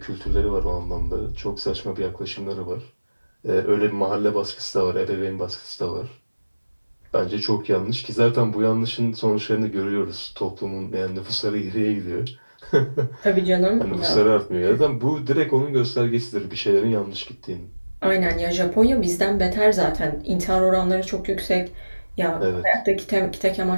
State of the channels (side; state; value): both; inverted; correlation -1.00